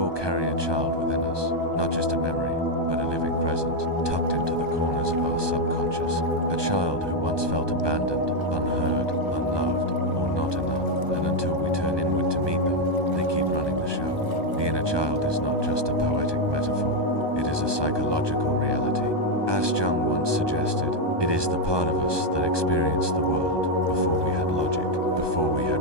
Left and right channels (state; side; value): late; left; 1.2 ms